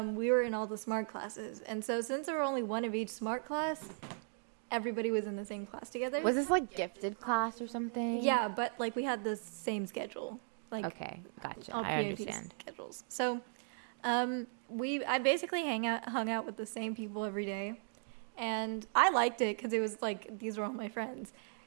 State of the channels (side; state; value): left; silent; 53 dB below the other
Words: we were in all the smart classes. And so since there were only one of each smart class, everybody was in the same class together. Was this like gifted class or something? Yeah, but like we had the same schedule. Like okay, gotcha. All I understand. Schedules. So, I basically hung out with the same people every day, and I liked it because it was like these were all my friends.